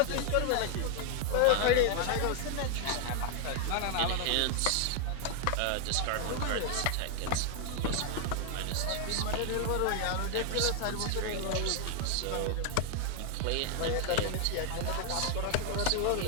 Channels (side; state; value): both; different; correlation 0.00